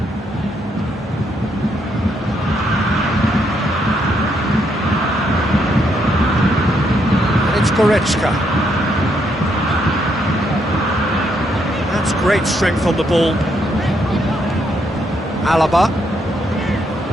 It's Goretzka. That's great strength on the ball. Alaba.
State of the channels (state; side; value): normal; both; correlation 0.75